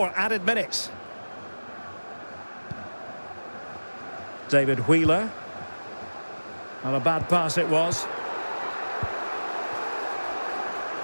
added minutes. David Wheeler. Not a bad pass it was.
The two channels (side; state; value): both; inverted; correlation -1.00